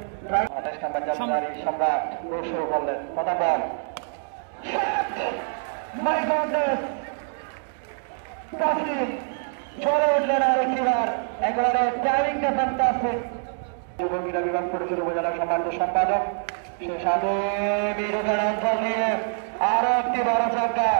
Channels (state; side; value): silent; left; digital silence